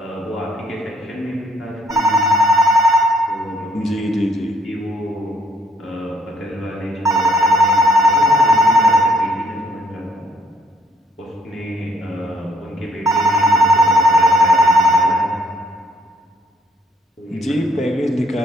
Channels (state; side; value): normal; both; correlation 0.66